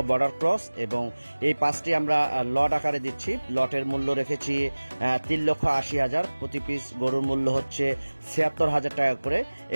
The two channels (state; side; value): inverted; both; correlation -1.00